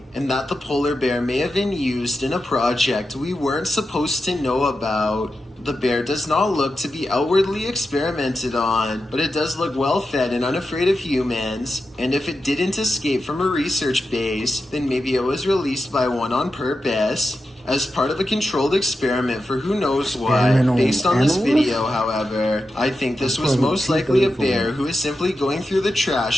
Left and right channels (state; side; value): normal; both; correlation 0.90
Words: and that the polar bear may have been used in a project we weren't supposed to know about. The bear does not look to be outwardly experimented on, but it does look well fed and unafraid of humans, and if it didn't escape from a research base, then maybe it was released by one on purpose. As part of a controlled experiment for who knows what. Based on this video, however, I think this was most likely a bear who is simply going through the